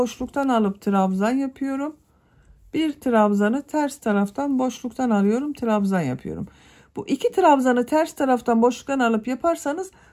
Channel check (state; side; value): identical; both; correlation 1.00